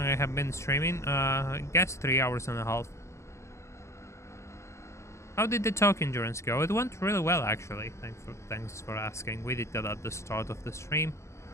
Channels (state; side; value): late; right; 0.14 ms